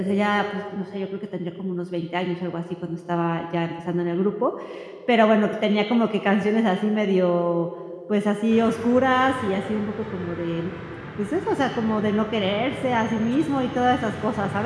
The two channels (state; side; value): identical; both; correlation 1.00